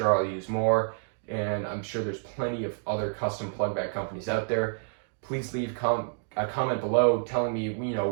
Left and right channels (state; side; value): silent; left; digital silence